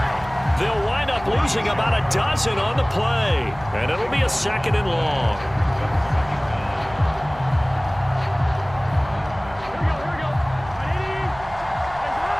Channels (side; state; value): right; noise; hum, 18 dB below the sound